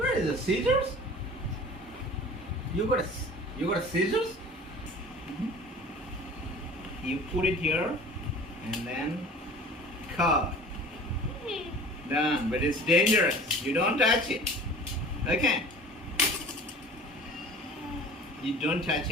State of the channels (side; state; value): both; normal; correlation 0.43